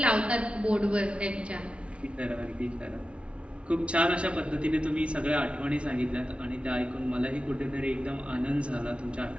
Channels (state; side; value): late; left; 0.060 ms